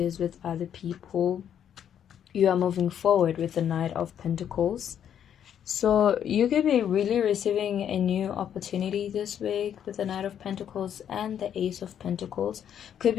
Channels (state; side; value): quieter; right; 9.3 dB